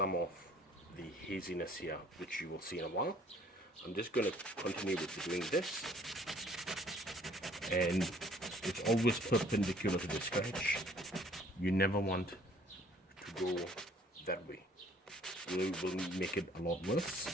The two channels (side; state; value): both; normal; correlation 0.57